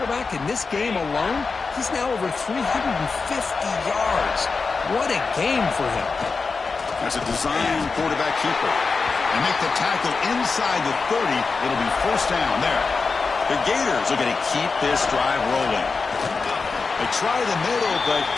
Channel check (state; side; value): quieter; right; 4.5 dB